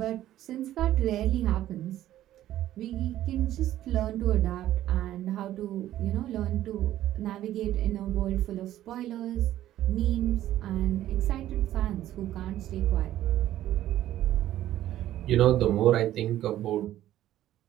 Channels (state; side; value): quieter; left; 13.2 dB